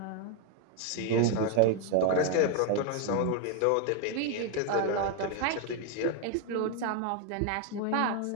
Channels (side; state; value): both; different; correlation 0.01